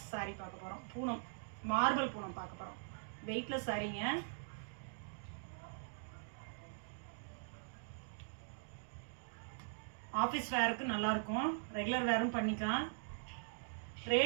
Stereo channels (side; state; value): left; silent; digital silence